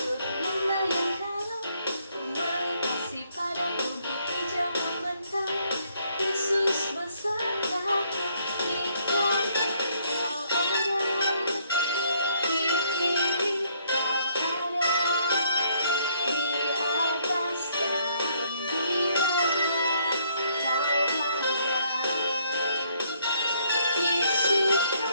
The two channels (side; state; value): both; inverted; correlation -0.68